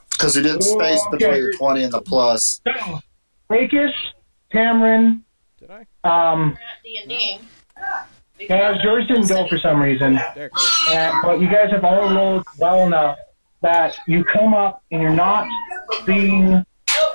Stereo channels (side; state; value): both; inverted; correlation -1.00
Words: Because we did space between the 20 and the plus. So, Rakis, Cameron, Did I? D&D. guys, yours didn't go for some reason. There it goes. But you guys have all rolled well enough that you come up and you're not being